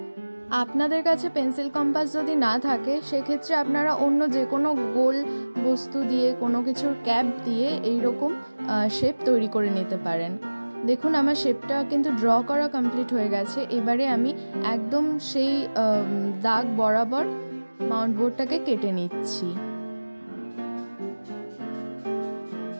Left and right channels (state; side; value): inverted; both; correlation -1.00